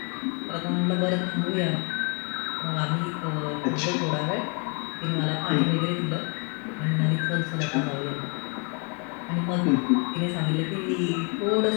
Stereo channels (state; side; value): quieter; right; 35.5 dB